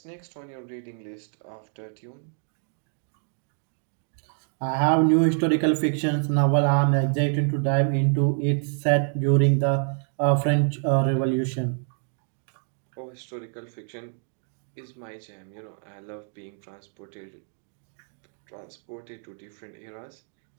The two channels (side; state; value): left; silent; 57 dB below the other